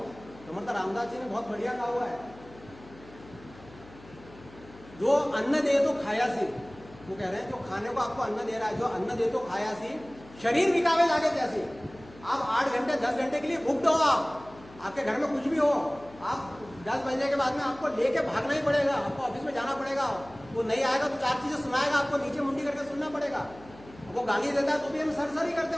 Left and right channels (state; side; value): noise; left; hum, 21 dB below the sound